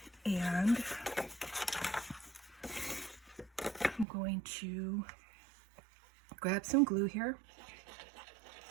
And I'm going to grab some glue here.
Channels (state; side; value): drops out; left; at 4.0 s